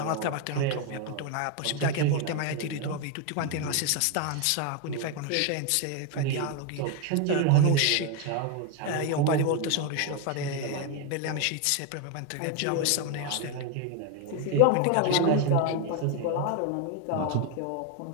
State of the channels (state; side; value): different; both; correlation 0.01